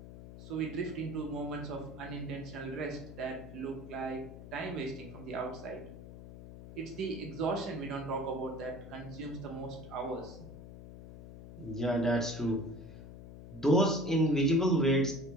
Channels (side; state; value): left; noise; hum, 14 dB below the sound